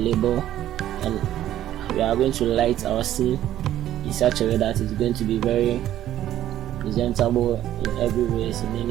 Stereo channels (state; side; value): quieter; left; 12.4 dB